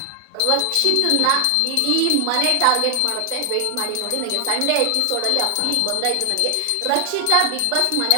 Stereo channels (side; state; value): both; different; correlation 0.00